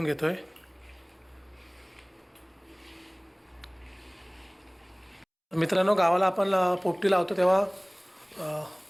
घेतो आहे. मित्रांनो, गावाला आपण पोपटी लावतो तेव्हा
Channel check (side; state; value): both; identical; correlation 1.00